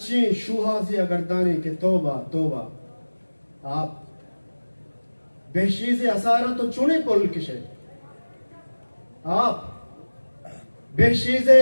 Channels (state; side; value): inverted; both; correlation -1.00